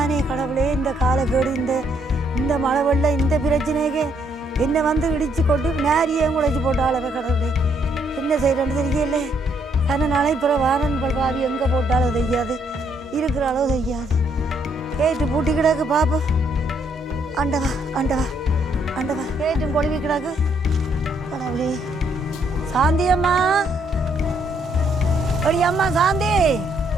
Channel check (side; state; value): both; normal; correlation 0.71